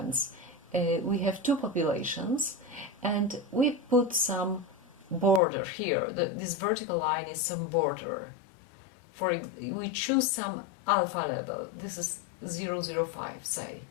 We have two populations, and we put some border here. This vertical line is some border. We choose some alpha level. This is 0.05, say.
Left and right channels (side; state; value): right; drops out; at 5.4 s